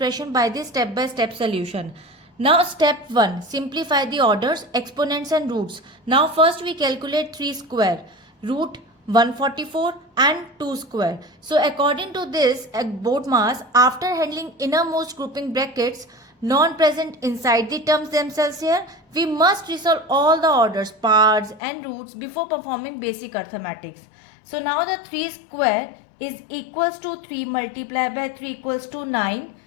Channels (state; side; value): drops out; right; at 21.6 s